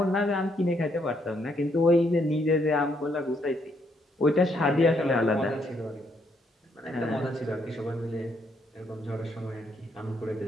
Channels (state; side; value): normal; both; correlation 0.73